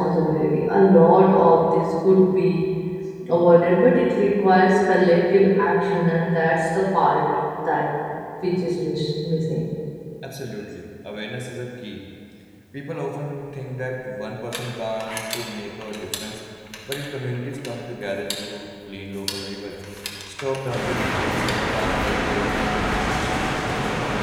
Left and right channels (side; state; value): both; identical; correlation 1.00